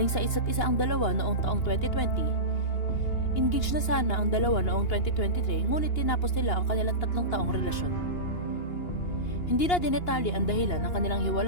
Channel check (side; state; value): right; late; 2.8 ms